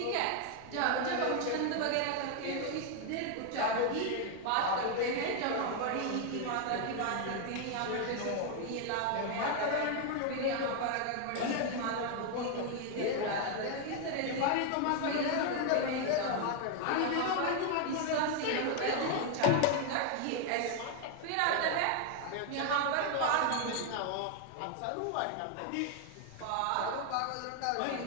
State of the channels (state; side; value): different; both; correlation 0.00